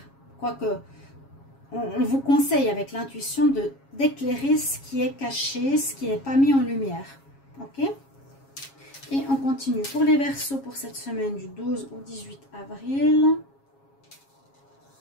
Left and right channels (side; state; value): right; late; 7.3 ms